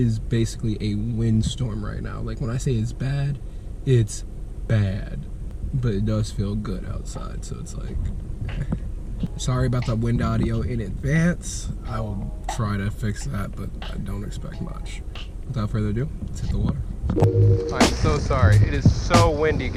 basically a windstorm right now. Like, when I say it's bad, but it does feel good outside, so it's like, sorry about the wind audio in advance. I will try to fix that, but I don't expect much. Without further ado, let's hit the water. I'm so sorry. It is so windy,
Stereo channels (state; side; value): identical; both; correlation 1.00